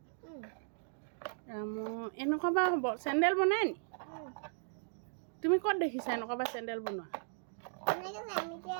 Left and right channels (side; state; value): left; silent; digital silence